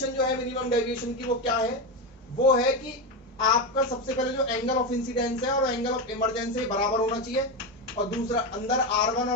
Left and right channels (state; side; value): normal; both; correlation 0.14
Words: जो है मिनिमम डेविएशन की वो क्या है, वो है कि आपका सबसे पहले जो एंगल ऑफ इंसिडेंस है और एंगल ऑफ इमरजेंस है बराबर होना चाहिए, और दूसरा अंदर R1